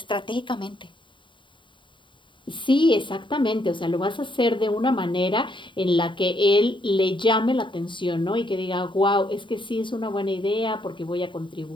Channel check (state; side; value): late; right; 0.23 ms